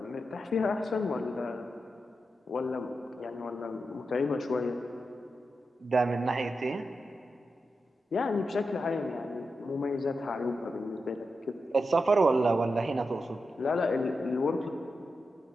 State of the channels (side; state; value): both; normal; correlation 0.88